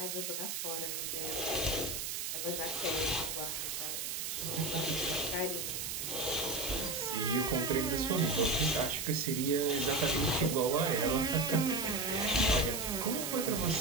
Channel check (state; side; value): noise; right; hiss, 3 dB below the sound